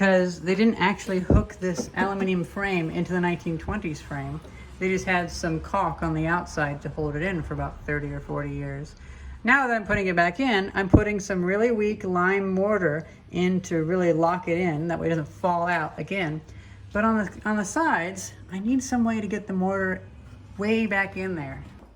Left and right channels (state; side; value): identical; both; correlation 1.00